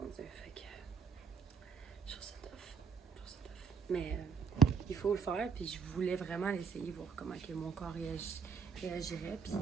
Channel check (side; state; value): left; quieter; 6.1 dB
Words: Dieu, fait que... Je trouve ça tough. Je trouve ça tough. Mais il faut le faire, puis je voulais vraiment l'essayer, voir comment que mon corps réagirait. Puis,